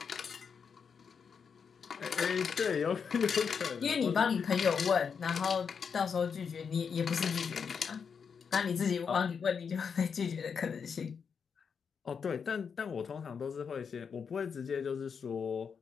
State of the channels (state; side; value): quieter; right; 6.3 dB